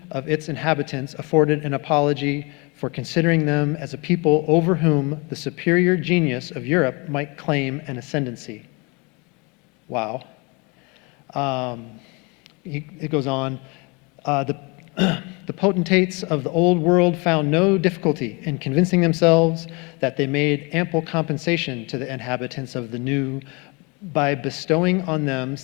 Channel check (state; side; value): quieter; right; 29.4 dB